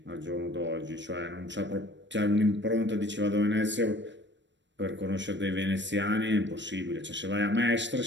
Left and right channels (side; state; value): left; late; 0.53 ms